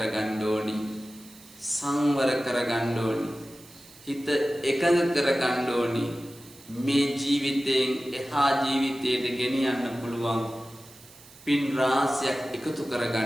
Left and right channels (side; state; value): right; noise; hiss, 22 dB below the sound